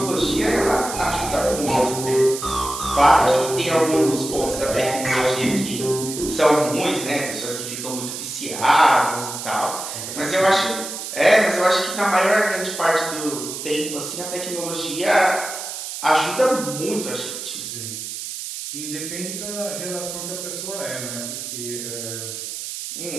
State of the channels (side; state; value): right; noise; hiss, 7 dB below the sound